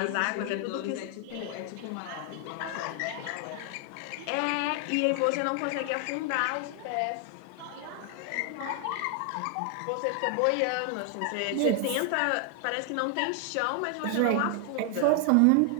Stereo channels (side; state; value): both; different; correlation 0.00